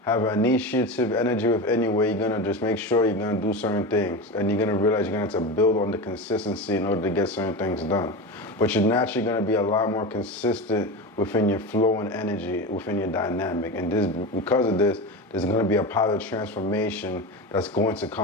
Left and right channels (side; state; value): both; normal; correlation 0.24